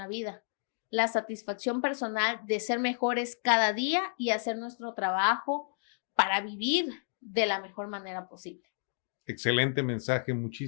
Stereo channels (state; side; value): silent; right; digital silence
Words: vida. La satisfacción personal de ser mejores cada día y hacer nuestro trabajo para vivir de la mejor manera posible. Excelente mensaje,